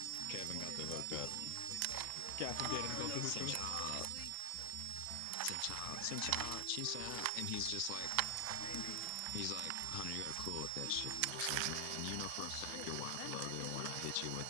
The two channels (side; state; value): both; different; correlation 0.00